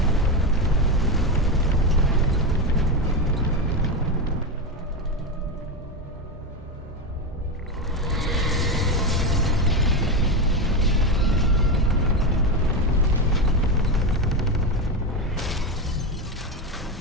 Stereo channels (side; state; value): both; normal; correlation 0.14